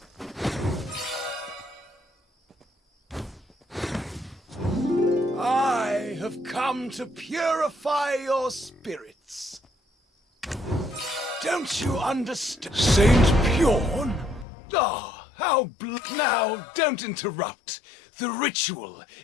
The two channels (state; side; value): drops out; right; at 14.5 s